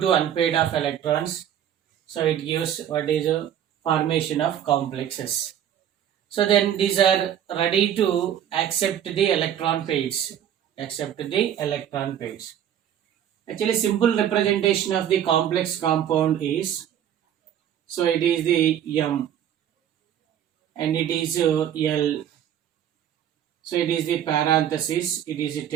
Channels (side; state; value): left; quieter; 10.1 dB